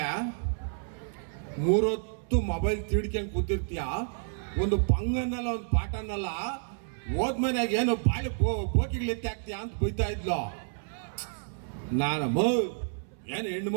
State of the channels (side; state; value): left; silent; 58 dB below the other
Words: 3 ಹೊತ್ತು ಮೊಬೈಲ್ ತಿಡ್ಕೊಂಡು ಕೂತಿರ್ತೀಯ, ಒಂದು ಪಂಗನ್ನಲ್ಲ ಒಂದು ಪಾಠನಲ್ಲ, ಹೋದ್ಮನ್ಯಾಗ ಏನು ಬಾಳಿ ಬೋಕಿಗಳಿತ್ತೆ ಆಗ್ತೀಯ ಅಂತ ಬೈತಾ ಇದ್ಲು. ನಾನು ಏನು ಹೆಣ್ಣು